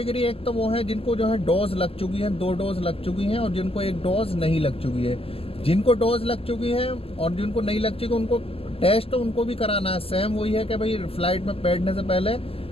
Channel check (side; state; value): right; late; 0.28 ms